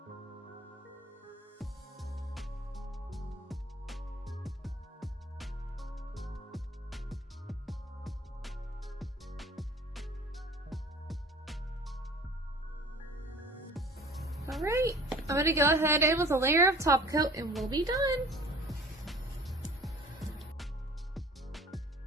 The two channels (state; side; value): normal; both; correlation 0.47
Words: Alright, I'm going to go ahead in with a layer of top coat and we'll be done.